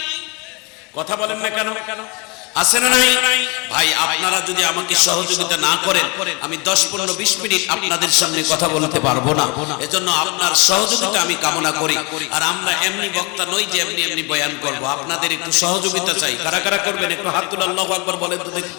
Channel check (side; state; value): right; quieter; 29.4 dB